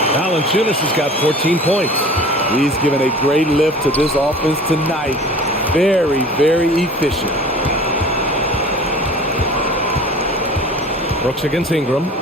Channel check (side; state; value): both; normal; correlation 0.42